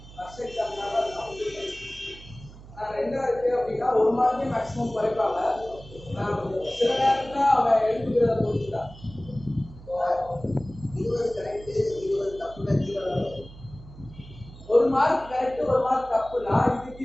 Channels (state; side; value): noise; right; hum, 18 dB below the sound